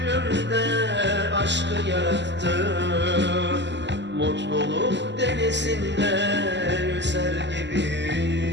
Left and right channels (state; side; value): late; left; 0.51 ms